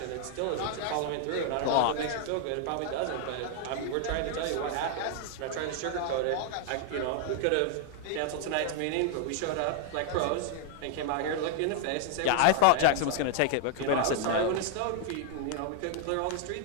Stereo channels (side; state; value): both; different; correlation 0.00